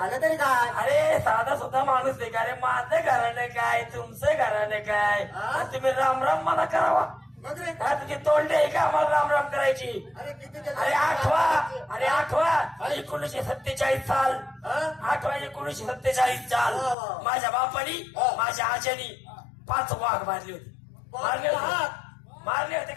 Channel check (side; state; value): right; drops out; at 16.9 s